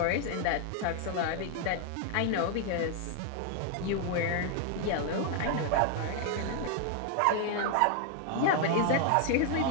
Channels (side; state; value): both; different; correlation 0.00